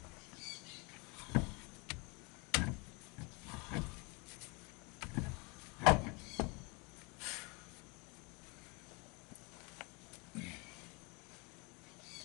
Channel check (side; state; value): right; quieter; 30.0 dB